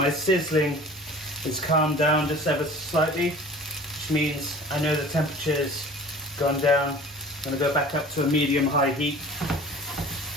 sizzling is calmed down just ever so slightly, which means I know the temperature's gone down. I'm going to go back up to a medium-high heat.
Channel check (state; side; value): normal; both; correlation 0.44